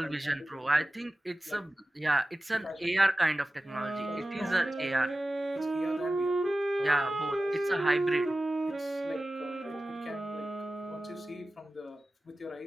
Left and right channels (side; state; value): both; normal; correlation 0.96